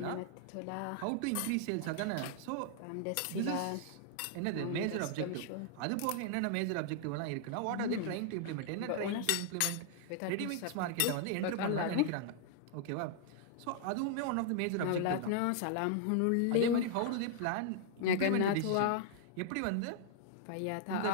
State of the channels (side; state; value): both; different; correlation -0.01